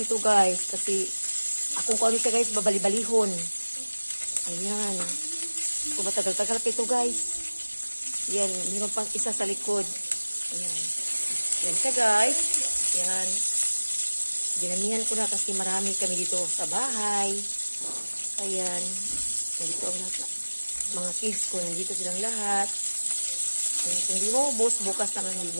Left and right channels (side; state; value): both; inverted; correlation -1.00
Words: guys. Kasi akong kung ano siya guys, babali-balihon. Ayan. Kung matagal-tagal pa ito guys. Ayan, meron pang isa sa likod. Ayan. Ayan siya guys. Ayan. Ginamihan ko na kasi marami kami dito sa bahay. Ayan. Nandito ang lahat. Mga kids ko, nandito silang lahat. Ayan. Kung di mo ubos, bukas naman,